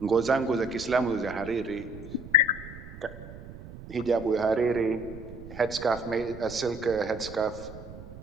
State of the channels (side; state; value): right; noise; rumble, 14 dB below the sound